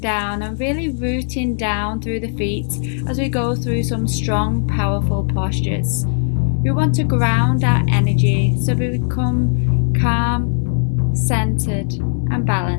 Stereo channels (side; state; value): right; silent; digital silence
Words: and really rooting down through the feet as we go through some strong, powerful postures. We want to ground our energy so we become calm, centered, and